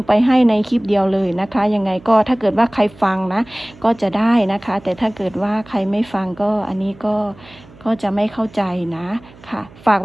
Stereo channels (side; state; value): right; noise; hum, 23 dB below the sound